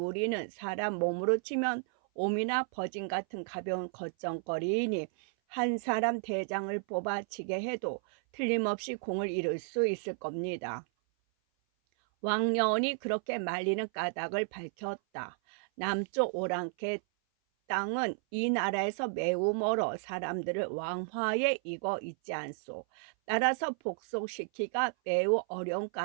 사람 몸으로 치면 옴이나 버진 같은 가벼운 겉정거리이니 한 사람 대장을 뽑아치게 해도 틀림없이 공을 이룰 수 있을 겁니다. 왕년이 그렇게 말리는 까닭을 밝혔다. 남쪽 오랑캐 땅은 이 나라에서 매우 멀어 사람들을 왕화에 익어 있지 않소. 따라서 복속시키기가 매우 어려운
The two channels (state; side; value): silent; left; 56 dB below the other